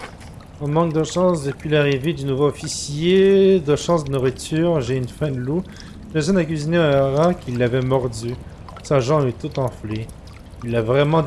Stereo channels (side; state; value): both; identical; correlation 1.00